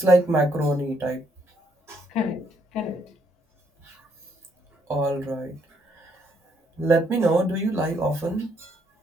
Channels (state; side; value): normal; both; correlation 0.71